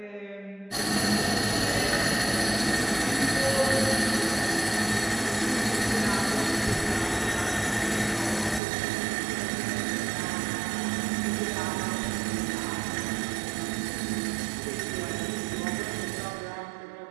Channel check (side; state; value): left; drops out; at 8.6 s